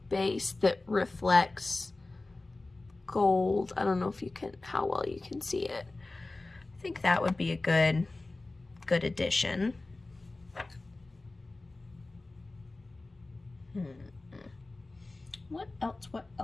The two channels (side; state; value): right; quieter; 3.1 dB